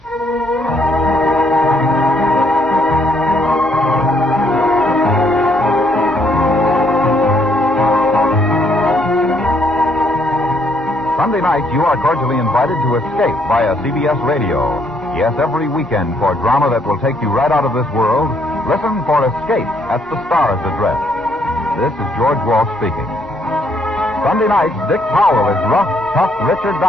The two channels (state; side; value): normal; both; correlation 0.70